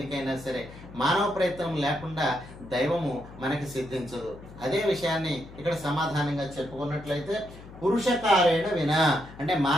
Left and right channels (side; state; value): left; noise; hum, 17 dB below the sound